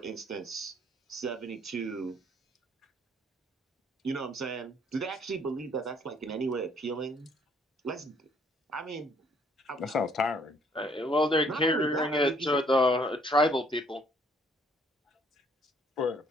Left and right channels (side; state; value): both; normal; correlation 0.64